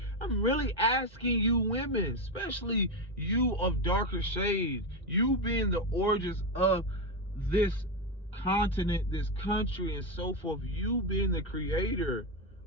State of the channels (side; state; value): both; normal; correlation 0.10